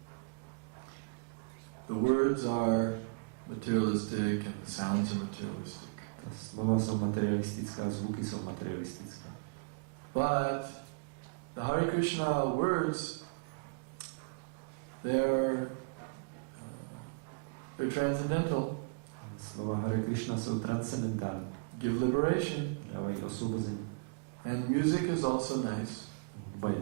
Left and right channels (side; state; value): left; quieter; 36.3 dB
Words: The words are materialistic and the sounds are materialistic. Ta slova jsou materialistická, zvuky jsou materialistické. But the Hare Krishna words, they're transcendental. Slova Hare Krishna jsou transcendentální. Give liberation. Dávají osvobození. And music is also nice. Hudba je